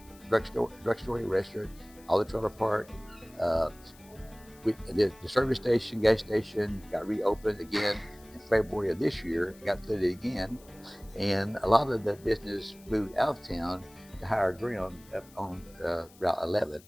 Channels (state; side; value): noise; left; hiss, 25 dB below the sound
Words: drugstore, restaurant, all the trailer park. The service station, gas station got reopened again in February of this year. It got flooded again, and a lot of the business moved out of town to higher ground up on Route 11.